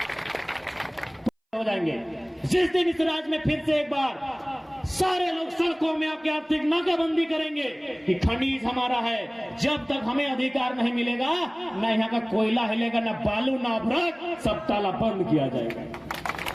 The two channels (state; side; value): identical; both; correlation 1.00